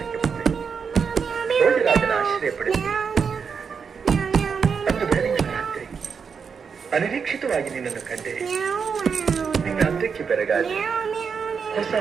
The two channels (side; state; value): left; quieter; 6.1 dB